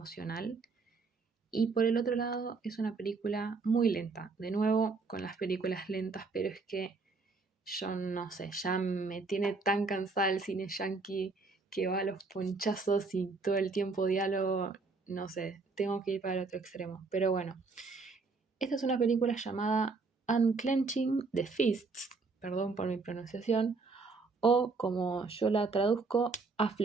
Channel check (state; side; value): quieter; left; 4.1 dB